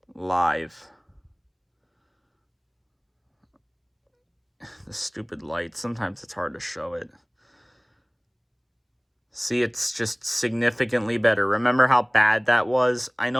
live. The stupid light. Sometimes it's hard to show it. See, it's just significantly better. Remember how bad that was? I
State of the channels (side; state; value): both; identical; correlation 1.00